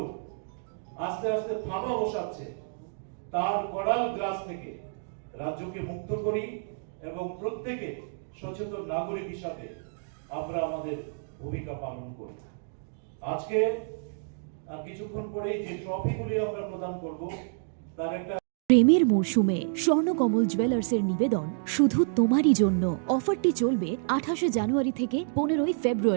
আস্তে আস্তে থাবা বসাচ্ছে, তার করাল গ্রাস থেকে রাজ্যকে মুক্ত করি এবং প্রত্যেকে সচেতন নাগরিক হিসাবে আমরা আমাদের ভূমিকা পালন করি। আজকে কিছুক্ষণ পরেই যে ট্রফিগুলি আমরা প্রদান করব তার একটা প্রেমের মরশুমে স্বর্ণকমল জুয়েলার্সের নিবেদন শুধু তোমারই জন্য। অফারটি চলবে 28 জানুয়ারি থেকে 15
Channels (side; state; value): left; silent; digital silence